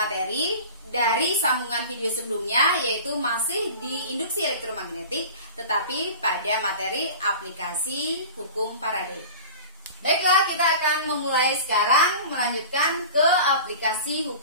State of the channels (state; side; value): inverted; both; correlation -0.37